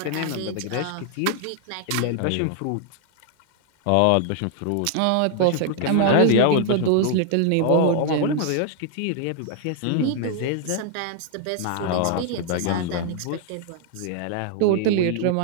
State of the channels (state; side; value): different; both; correlation 0.00